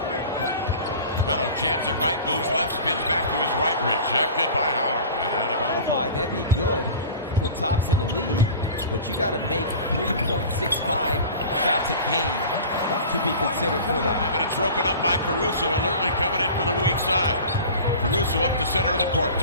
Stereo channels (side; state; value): both; inverted; correlation -0.38